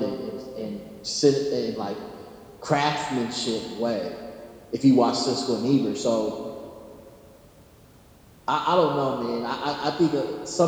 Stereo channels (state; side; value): identical; both; correlation 1.00